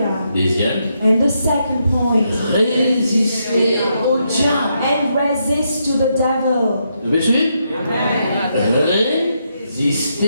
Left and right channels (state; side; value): inverted; both; correlation -0.80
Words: Deuxième, And the second point. résistez au diable. And resist to the devil. Vous me suivez?